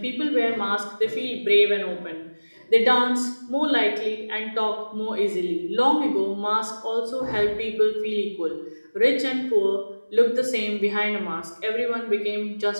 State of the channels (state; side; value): inverted; both; correlation -1.00